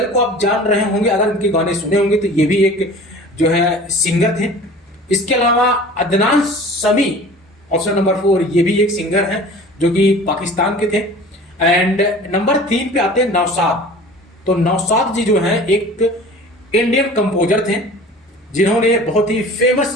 को आप जान रहे होंगे, अगर उनके गाने सुने होंगे तो ये भी एक जो है सिंगर थे। इसके अलावा अदनान समी ऑप्शन नंबर 4 ये भी एक सिंगर है जो कि पाकिस्तान के थे। एंड नंबर 3 पे आते हैं नौशाद। तो नौशाद जी जो हैं एक इंडियन कंपोजर थे जिन्होंने बहुत ही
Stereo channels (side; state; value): both; normal; correlation 0.42